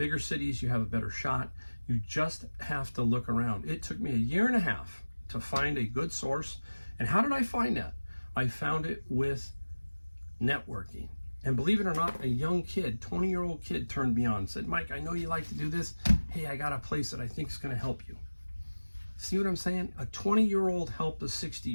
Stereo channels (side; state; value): both; inverted; correlation -1.00